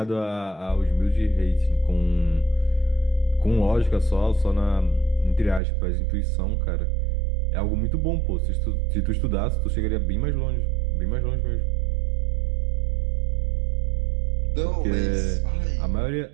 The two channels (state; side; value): drops out; left; at 5.6 s